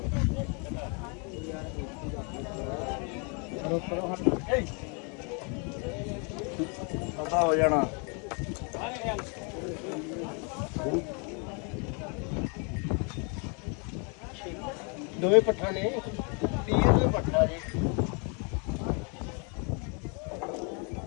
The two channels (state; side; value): quieter; right; 35.5 dB